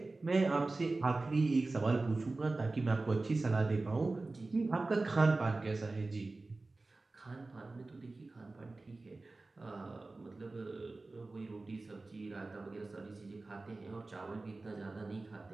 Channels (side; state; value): left; quieter; 3.3 dB